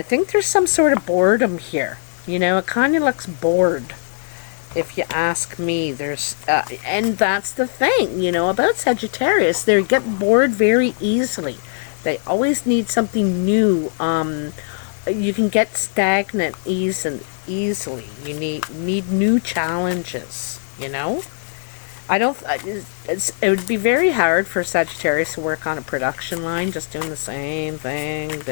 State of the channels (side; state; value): right; silent; digital silence